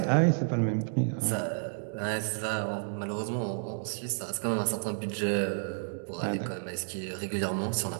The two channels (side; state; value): left; silent; digital silence